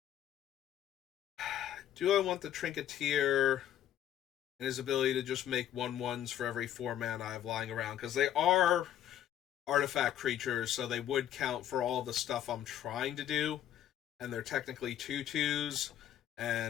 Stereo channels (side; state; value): right; quieter; 11.1 dB